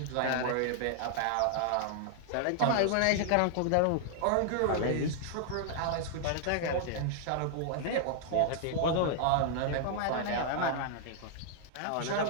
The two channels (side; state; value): both; different; correlation -0.01